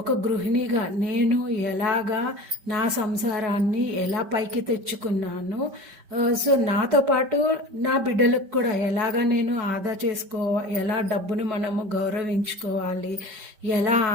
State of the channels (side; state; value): left; late; 5.2 ms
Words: గృహిణిగా నేను ఎలాగా నా సంసారాన్ని ఎలా పైకి తెచ్చుకున్నాను, సో నాతో పాటు నా బిడ్డలకు కూడా ఎలాగా నేను ఆదా ఎలా డబ్బును మనము గౌరవించుకోవాలి, ఎలా